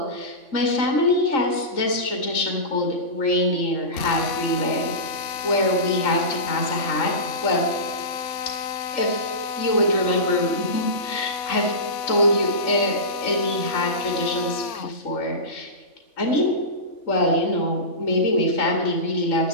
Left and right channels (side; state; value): right; late; 3.5 ms